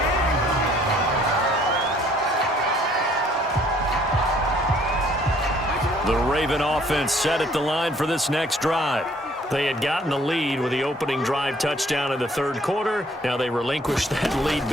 The Raven offense set at the line for this next drive. They had gotten the lead with the opening drive touchdown in the 3rd quarter. Now they relinquished that lead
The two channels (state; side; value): normal; both; correlation 0.61